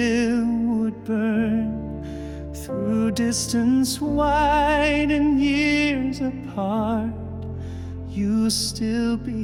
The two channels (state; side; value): identical; both; correlation 1.00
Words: would burn. Through distance wide and years apart, you still